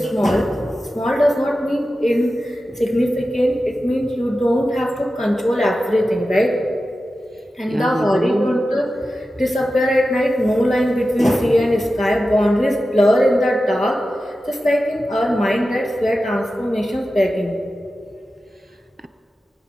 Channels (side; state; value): both; normal; correlation 0.93